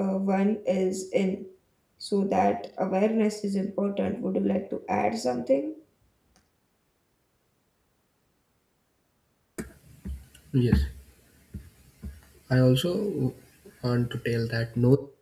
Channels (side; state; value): both; identical; correlation 1.00